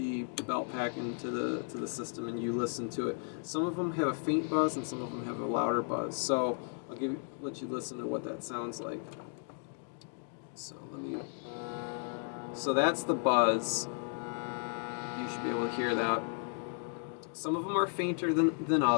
belt pack into the system and you listen to it. Some of them have a faint buzz and some of them have a louder buzz. So I'll let you listen to what that sounds like. So that's the buzz. You should be able to hear that. Some of them are fainter than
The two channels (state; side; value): silent; right; 55 dB below the other